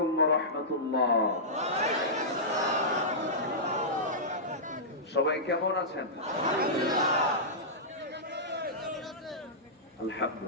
ওয়া রাহমাতুল্লাহ। সবাই কেমন আছেন?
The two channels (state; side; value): normal; both; correlation -0.14